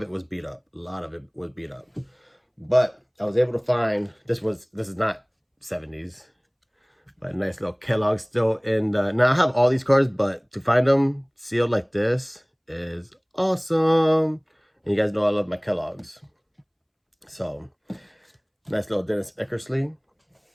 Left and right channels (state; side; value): identical; both; correlation 1.00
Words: it was beat up. But I was able to find, this is not 70s, but a nice little Kellogg still in the, now I have all these cards, but to find them sealed like this is awesome. And you guys know I love my Kellogg's. So, nice little Dennis Eckersley.